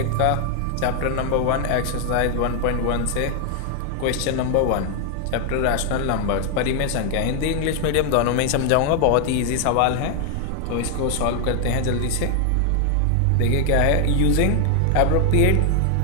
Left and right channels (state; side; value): different; both; correlation 0.00